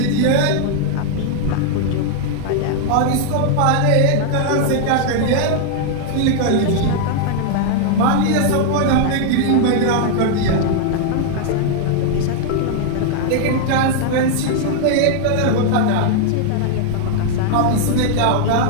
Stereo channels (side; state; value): both; different; correlation 0.00